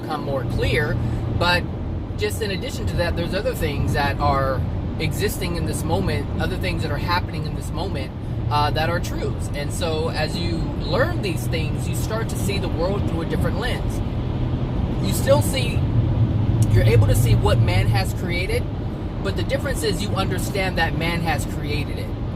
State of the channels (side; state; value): both; identical; correlation 1.00